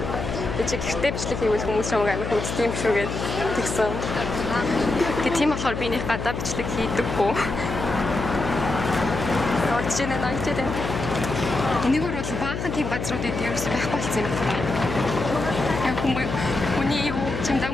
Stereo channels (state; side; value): noise; left; hum, 4 dB below the sound